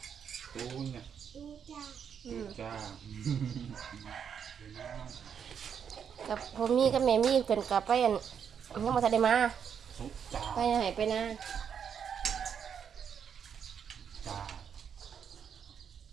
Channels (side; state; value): left; quieter; 7.6 dB